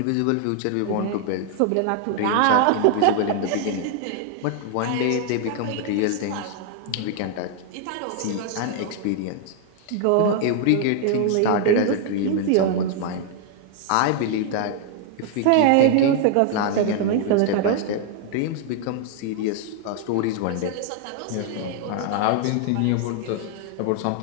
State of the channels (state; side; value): different; both; correlation 0.00